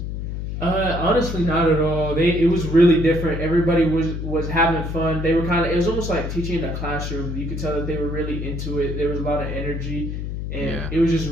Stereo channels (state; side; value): noise; left; hum, 4 dB below the sound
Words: Honestly, not at all. It was really different. Everybody was having fun. They were it was almost like teaching in a classroom. You could tell that they were really into it. There was a lot of energy, and it was just